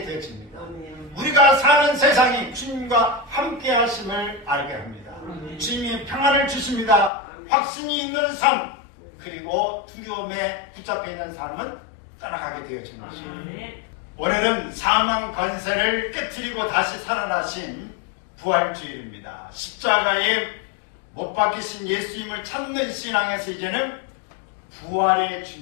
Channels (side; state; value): right; drops out; at 7.1 s